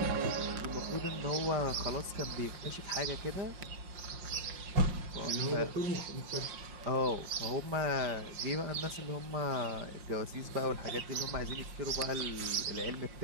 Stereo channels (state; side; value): late; left; 5.5 ms